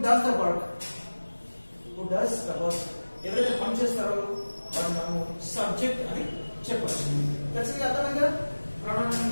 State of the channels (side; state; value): both; inverted; correlation -1.00